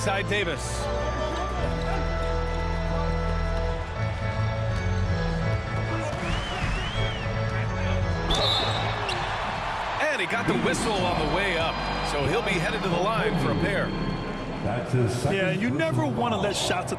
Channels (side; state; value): both; identical; correlation 1.00